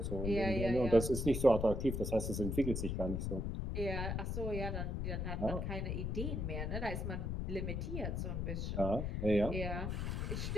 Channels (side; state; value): left; noise; rumble, 1 dB below the sound